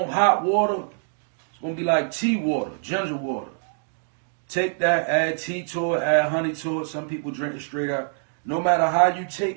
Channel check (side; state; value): left; silent; digital silence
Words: hot water. It's going to be like tea water, ginger water. Take that, add tea to it, add honey to it. Some people drink it straight up. No matter how you